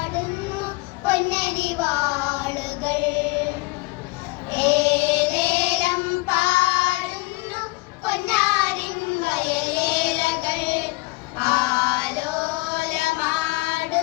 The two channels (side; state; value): right; quieter; 24.4 dB